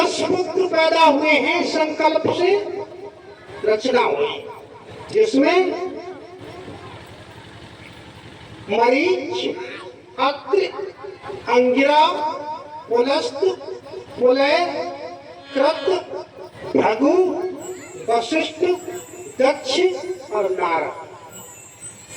पुत्र पैदा हुए हैं, संकल्प से रचना हुई, जिसमें मरीच, अत्रि, अंगिरा, पुलस्त, पुलय, कृत, भृगु, वशिष्ठ, दक्ष और नारद।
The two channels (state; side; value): identical; both; correlation 1.00